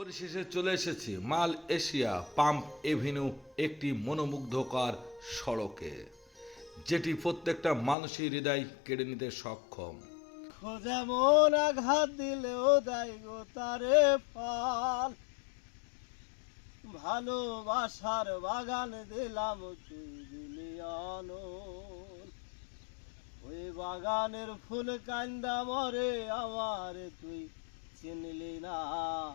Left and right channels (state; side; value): drops out; right; at 8.0 s